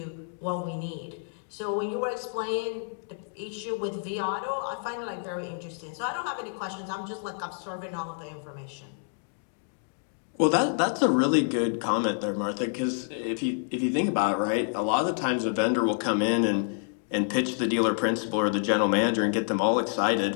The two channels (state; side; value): silent; right; 59 dB below the other